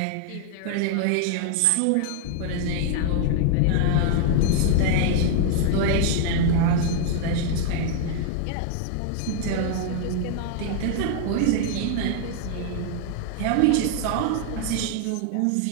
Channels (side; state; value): both; different; correlation 0.00